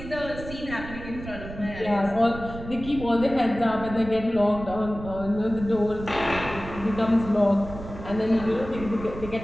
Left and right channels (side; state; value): right; noise; rumble, 12 dB below the sound